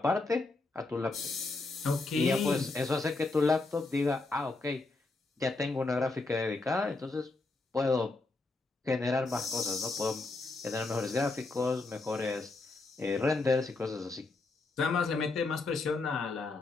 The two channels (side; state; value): right; quieter; 3.5 dB